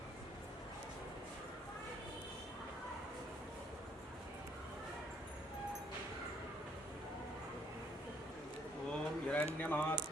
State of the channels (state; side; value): normal; both; correlation 0.67